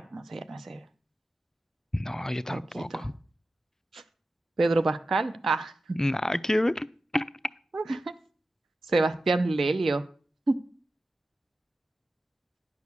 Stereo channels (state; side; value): normal; both; correlation 0.93